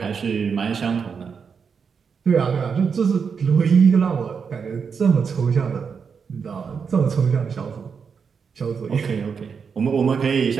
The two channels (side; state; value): left; quieter; 6.1 dB